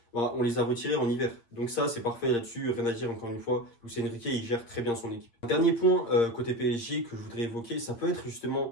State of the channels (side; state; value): right; late; 8.9 ms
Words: bah, on les a retirés en hiver. Donc ça, c'est parfait là-dessus, rien à dire encore une fois. Luis Enrique, il gère très bien son équipe. Un dernier point côté PSG que je voudrais évoquer, ça peut être